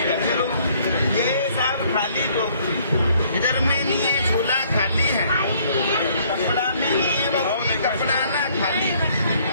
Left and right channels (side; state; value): both; inverted; correlation -0.62